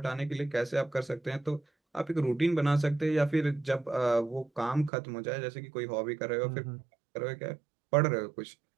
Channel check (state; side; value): drops out; left; at 4.9 s